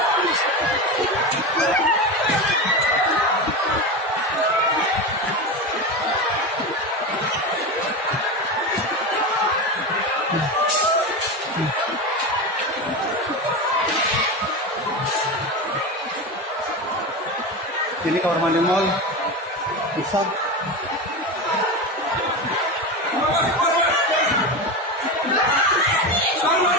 Ini kamar mandi mall Pusat.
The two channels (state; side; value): normal; both; correlation 0.21